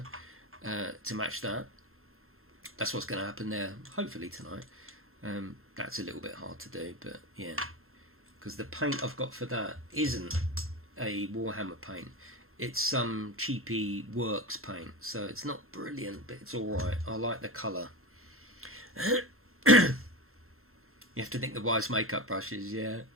to match that, that's what's going to happen there, hopefully tonight. That's a little bit hard to do, but yeah, because the paint I've got for that isn't a Warhammer paint. It's some cheapy works paint, so it's not brilliant, but it's alright. I like the colour. You have to think the wise makeup brushes, yeah.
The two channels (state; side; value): normal; both; correlation 0.23